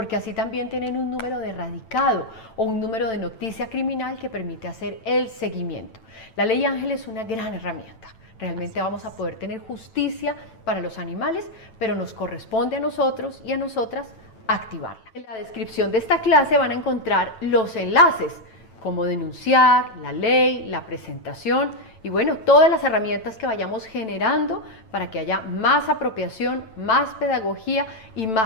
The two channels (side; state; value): right; late; 9.0 ms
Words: así también tienen un número de radicado o un número de noticia criminal que permite hacer el seguimiento. La ley Ángel es una gran herramienta. Realmente vamos a poder tener justicia para los animales, pero nos corresponde a nosotros y a nosotras activarla. En la descripción de esta clase van a encontrar los enlaces, cómo denunciar, la ley, la presentación y bueno, todas las herramientas que vayamos generando para que haya más apropiación, más pedagogía y